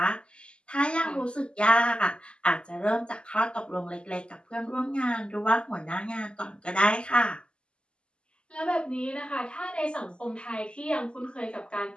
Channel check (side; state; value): right; late; 0.051 ms